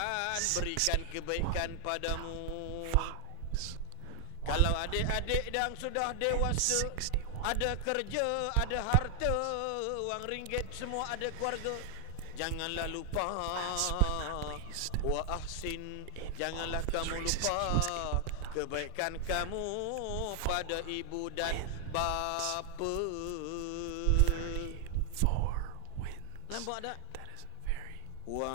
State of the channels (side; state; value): both; different; correlation 0.00